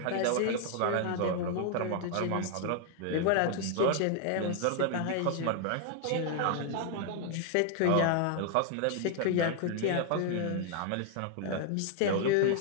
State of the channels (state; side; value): different; both; correlation 0.00